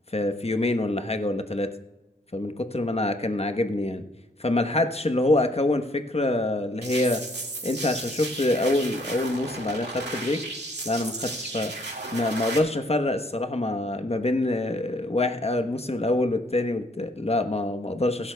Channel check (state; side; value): normal; both; correlation 0.65